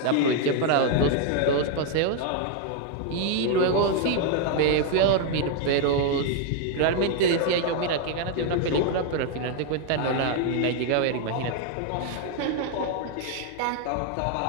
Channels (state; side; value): different; both; correlation 0.01